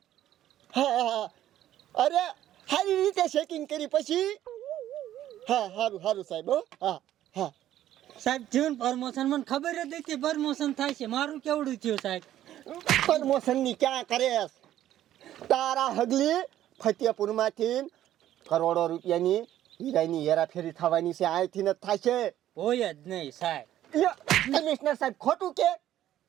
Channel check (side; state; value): left; quieter; 12.5 dB